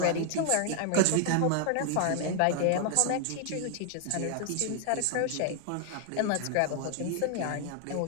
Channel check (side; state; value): both; different; correlation 0.00